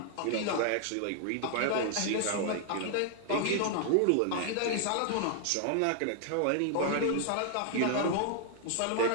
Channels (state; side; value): different; both; correlation 0.00